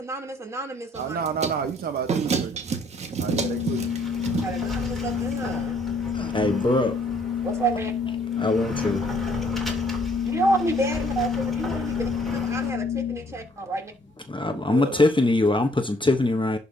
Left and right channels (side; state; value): both; normal; correlation 0.63